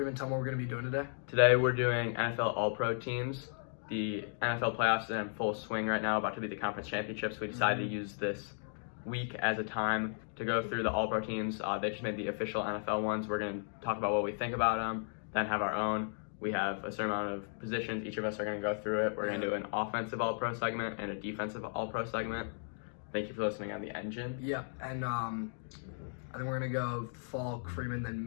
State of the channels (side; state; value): right; silent; digital silence